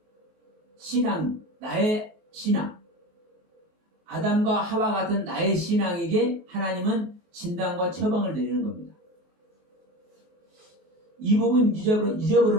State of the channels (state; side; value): late; left; 23 ms